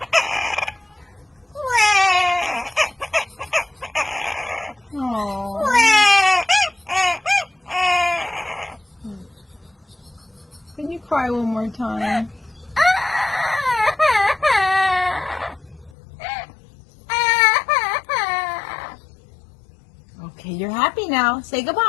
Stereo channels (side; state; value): right; drops out; at 15.9 s